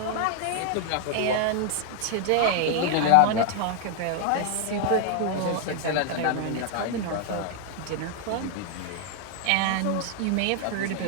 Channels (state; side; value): different; both; correlation 0.00